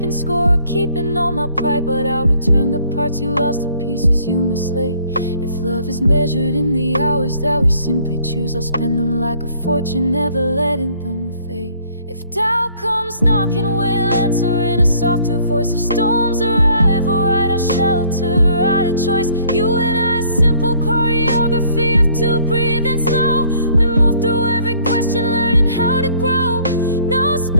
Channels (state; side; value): inverted; both; correlation -0.60